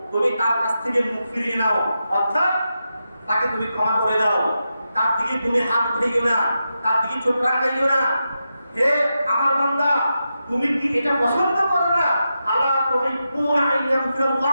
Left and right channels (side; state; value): both; inverted; correlation -0.88